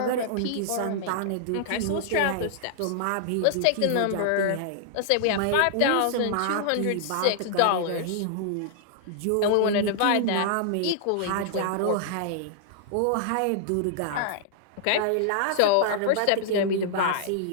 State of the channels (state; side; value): different; both; correlation -0.01